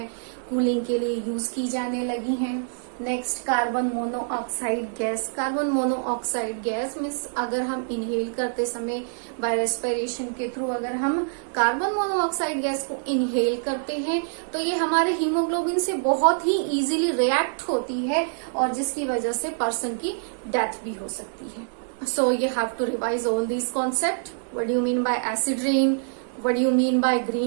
कूलिंग के लिए यूज की जाने लगी हैं. Next carbon monoxide gas. Carbon monoxide gas means अगर हम इनहेल करते समय बाय रेस्पिरेशन के थ्रू अगर हम कार्बन मोनोऑक्साइड गैस को इनहेल करते हैं तो ये हमारे हीमोग्लोबिन से बहुत ही इजीली रिएक्ट होती है और जिसकी वजह से पर्सन की डेथ भी हो सकती है. So you have to revise all these concepts. What do you mean by acid rain? What do you mean by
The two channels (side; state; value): left; silent; 59 dB below the other